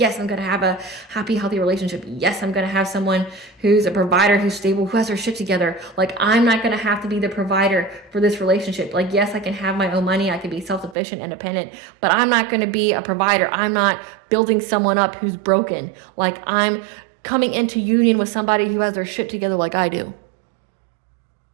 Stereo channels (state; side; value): drops out; left; at 11.0 s